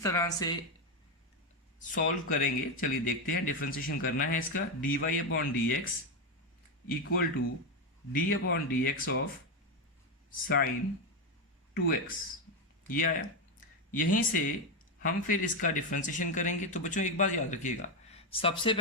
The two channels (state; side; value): normal; both; correlation 0.08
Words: तरह से सॉल्व करेंगे, चलिए देखते हैं। डिफरेंशिएशन करना है इसका, d y upon d x equal to d upon d x of sine 2x, ये आया। यहीं से हम फिर इसका डिफरेंशिएशन करेंगे। तो बच्चों एक बात याद रखिएगा, सबसे